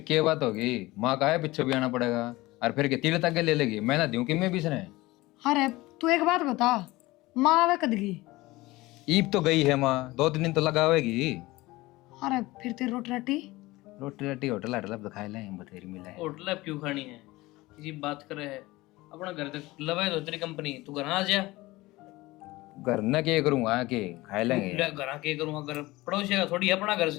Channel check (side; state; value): right; quieter; 19.9 dB